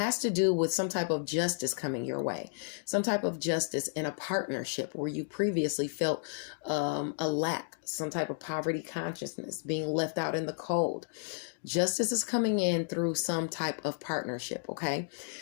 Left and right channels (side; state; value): right; silent; digital silence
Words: to do with some type of justice coming your way, some type of justice in a partnership where you previously felt a lack, some type of poverty consciousness, being left out in the cold. Justice is coming in through some type of partnership, okay?